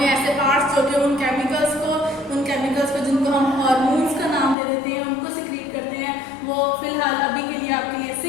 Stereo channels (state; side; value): drops out; right; at 4.5 s